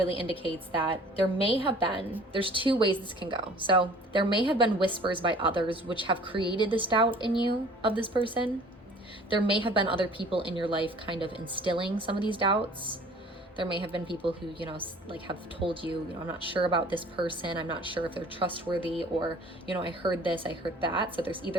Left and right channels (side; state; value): both; normal; correlation 0.50